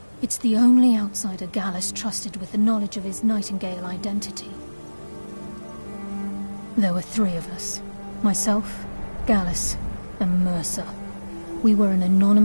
It's the only outsider Gallus trusted with the knowledge of his Nightingale identity. There were 3 of us. Myself, Gallus, and Mercer. We were an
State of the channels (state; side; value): inverted; both; correlation -1.00